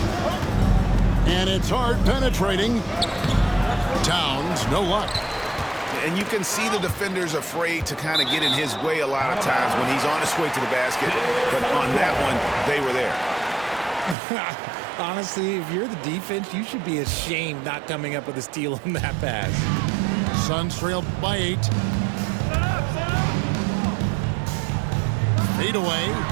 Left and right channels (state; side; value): drops out; left; at 14.2 s